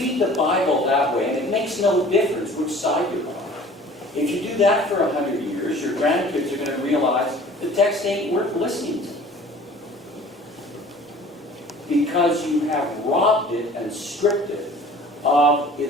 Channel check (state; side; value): normal; both; correlation 0.47